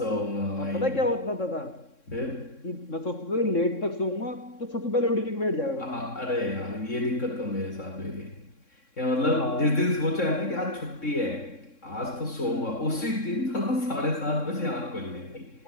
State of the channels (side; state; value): right; late; 3.6 ms